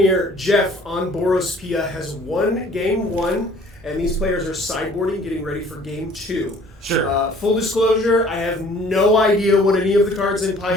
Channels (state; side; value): normal; both; correlation 0.54